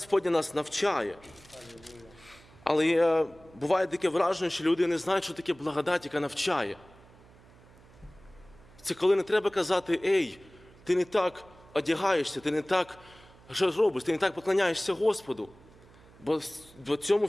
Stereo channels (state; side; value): noise; right; hum, 25 dB below the sound